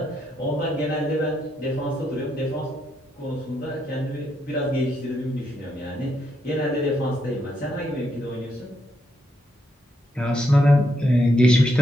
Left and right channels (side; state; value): both; normal; correlation 0.79